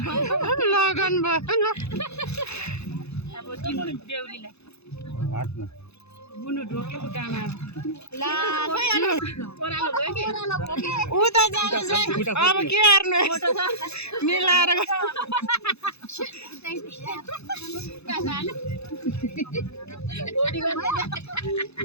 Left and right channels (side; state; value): right; late; 0.79 ms